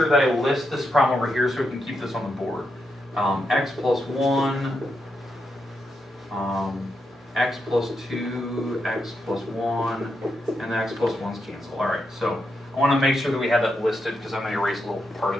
that I list this problem over here so we can keep this on the board. X plus 1, x plus 2, x plus 1, and the x plus 1's cancel. All right, so I want to make sure that we have that listed because I'm going to erase a little part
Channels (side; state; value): both; normal; correlation 0.84